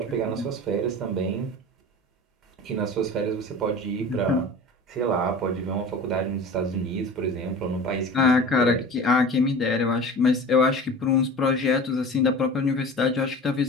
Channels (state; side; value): normal; both; correlation 0.37